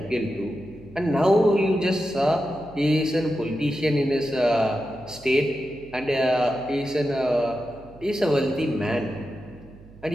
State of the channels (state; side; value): noise; right; hum, 22 dB below the sound